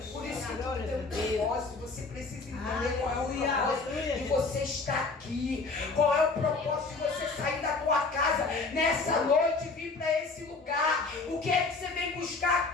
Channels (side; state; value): right; quieter; 3.9 dB